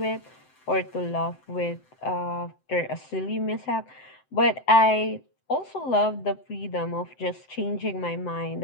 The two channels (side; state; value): right; late; 7.8 ms